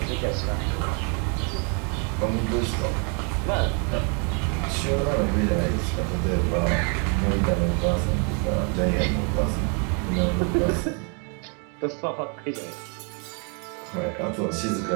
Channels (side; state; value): left; quieter; 36.2 dB